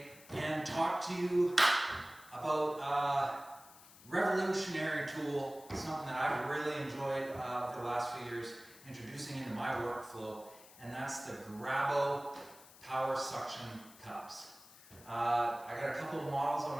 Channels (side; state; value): left; noise; hiss, 21 dB below the sound